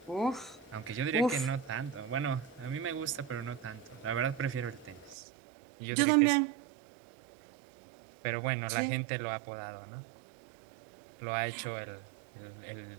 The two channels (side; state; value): left; drops out; at 5.2 s